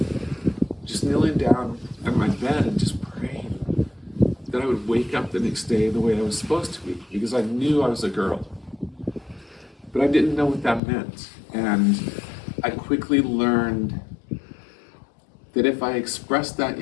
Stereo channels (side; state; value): right; drops out; at 10.8 s